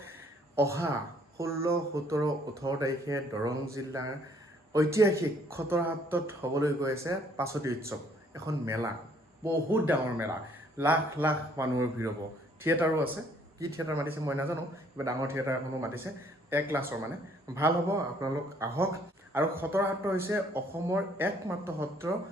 অহা 16, 17, 18 তাৰিখে দৰং জিলাৰ ঐতিহাসিক খটৰাহাটত হ'বলৈ গৈ আছে পাছতি উৎসৱ, এখন মেলা, বহুত ডাঙৰ মেলা, লাখ লাখ মানুহৰ ভিৰ হ'ব। থিয়েটাৰো আছে, কি থিয়েটাৰ মাতিছে মই নাজানো, কিবা ডাঙৰ থিয়েটাৰ এখনো মাতিছে, 1 ক্লাছৰ মানে। ভাল হ'ব, আপোনালোক আহক। আৰু খটৰাহাট হৈছে অসমৰ একমাত্ৰ সত্ৰ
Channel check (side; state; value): both; normal; correlation 0.63